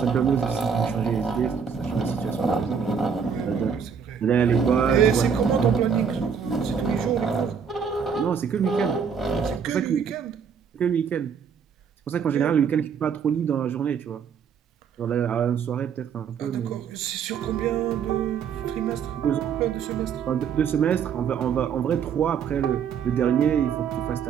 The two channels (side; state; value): left; quieter; 6.9 dB